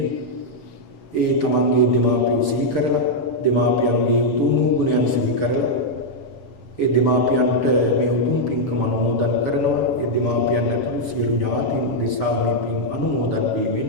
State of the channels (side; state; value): right; late; 6.7 ms